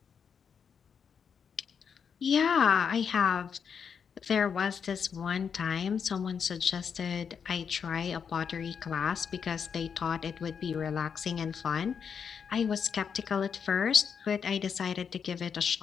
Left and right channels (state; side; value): quieter; right; 6.8 dB